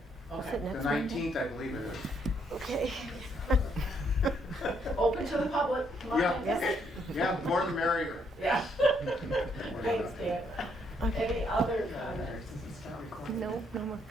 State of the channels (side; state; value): both; normal; correlation 0.72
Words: Okay. it the next Monday? 19th, I believe it is. Okay. Open to the public. Come on. Yeah, yeah, the more the merrier. Yeah. Thanks, Dan. Any other comments? No, no more